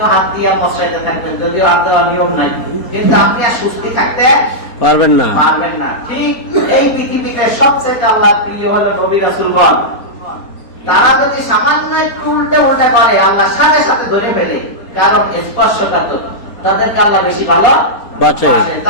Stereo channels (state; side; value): late; right; 4.2 ms